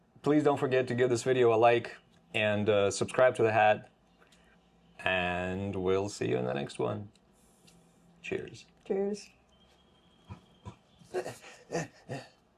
Please don't forget to give this video a like and subscribe to The Hat. And we'll see you in the next one. Cheers. Cheers. There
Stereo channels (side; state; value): both; identical; correlation 1.00